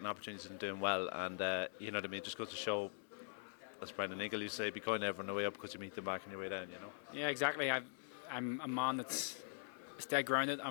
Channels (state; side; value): silent; right; digital silence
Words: opportunities and doing well, and you know what I mean. Just goes to show. As Brendan Eagle used to say, be kind to everyone on the way up because you meet them back on your way down, you know? Yeah, exactly. I'm a man that's dead grounded.